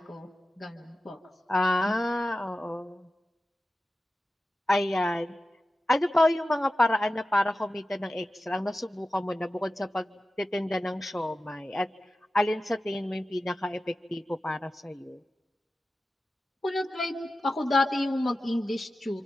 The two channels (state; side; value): normal; both; correlation 0.94